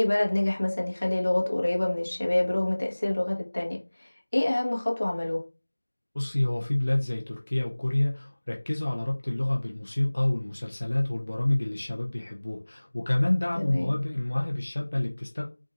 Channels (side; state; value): both; inverted; correlation -1.00